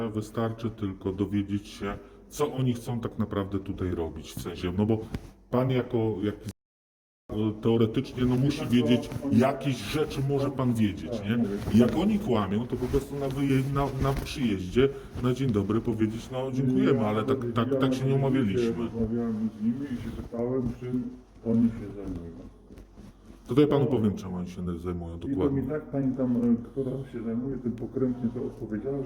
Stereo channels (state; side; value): identical; both; correlation 1.00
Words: wystarczy tylko dowiedzieć się, co oni chcą tak naprawdę tutaj robić. W sensie, no bo pan jako teoretycznie no musi wiedzieć, jakieś rzeczy może pan wiedzieć, nie? Jak oni kłamią, to po prostu na przyjeździe, na dzień dobry powiedzieć, no dziękujemy, ale tak się nie umawialiśmy. Rozmawiałem z nimi i się pytałem, czym oni się zajmują. To ja panu powiem, czym oni się zajmują I to dokładnie. mi tak pani tam, która się zajmuje tym pokrętnie, to odpowiedziała,